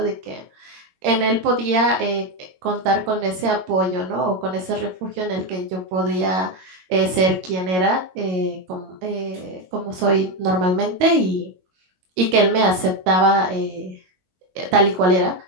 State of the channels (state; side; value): late; left; 22 ms